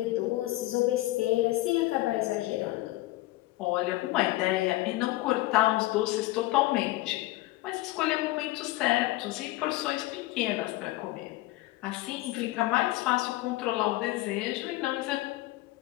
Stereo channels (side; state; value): right; quieter; 18.2 dB